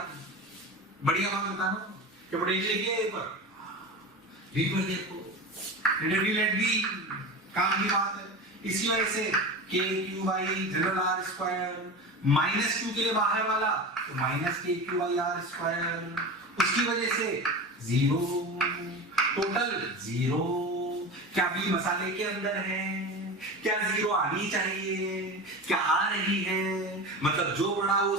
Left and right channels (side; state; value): both; normal; correlation 0.28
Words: बढ़िया बात बता रहा हूं कि पोटेंशियल लिखिए ए पर, बी पर देखो नेट बी, काम की बात है। इसकी वजह से K Q by general R square, minus Q के लिए बाहर वाला तो minus K Q by R square, उसकी वजह से जीरो, टोटल जीरो। क्या बी मसाले के अंदर है? क्या जीरो आनी चाहिए? क्या आ रही है? मतलब जो बड़ा वो